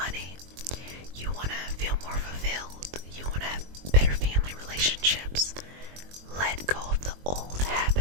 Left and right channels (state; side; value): late; left; 22 ms